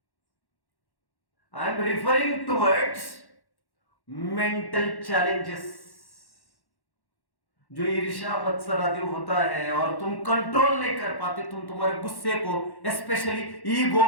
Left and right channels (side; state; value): right; late; 1.1 ms